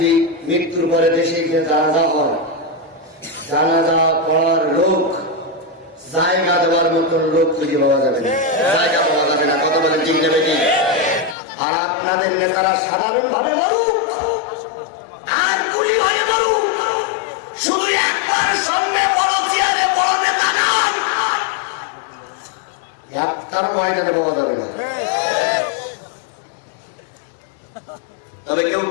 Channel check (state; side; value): drops out; right; at 11.4 s